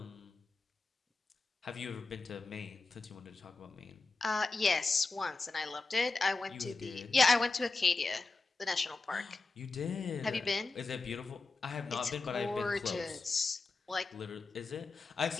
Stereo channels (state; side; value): quieter; right; 3.7 dB